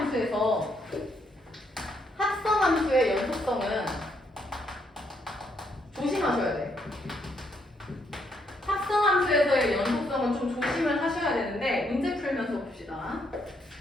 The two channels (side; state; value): both; normal; correlation 0.74